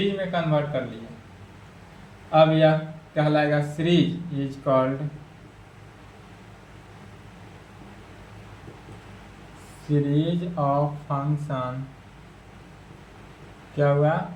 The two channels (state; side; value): identical; both; correlation 1.00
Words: में कन्वर्ट कर लिया। अब यह कहलाएगा series, is called series of function, क्या हुआ,